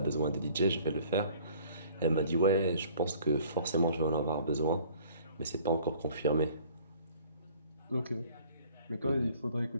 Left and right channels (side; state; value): both; inverted; correlation -0.54